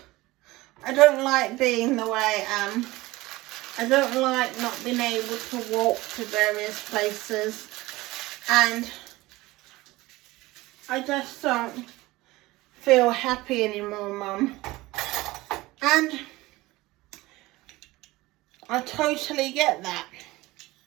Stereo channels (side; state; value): left; quieter; 19.7 dB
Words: I don't like being the way I am. I don't like not being able to walk to various places. And I just don't feel happy anymore, Mum. And I totally get that.